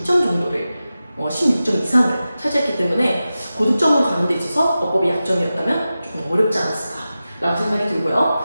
정도를 16점 이상을 차지했기 때문에 고득점으로 가는 데 있어서 어법이 약점이었다면 조금 어렵지 않았을까라고 생각이 들고요.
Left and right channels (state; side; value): inverted; both; correlation -0.94